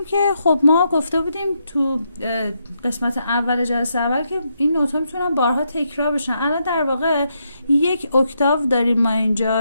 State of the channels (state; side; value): inverted; both; correlation -0.80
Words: که خب ما گفته بودیم تو قسمت اول جلسه اول که این نوت‌ها میتونن بارها تکرار بشن. الان در واقع یک اکتاو داریم ما